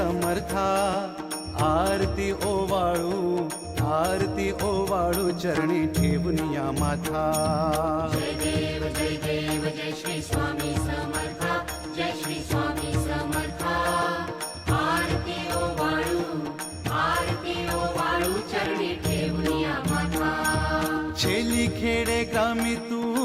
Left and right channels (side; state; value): both; identical; correlation 1.00